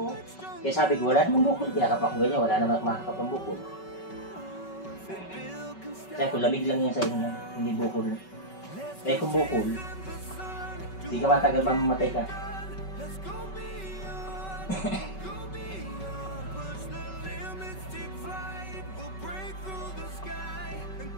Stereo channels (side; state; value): right; late; 5.3 ms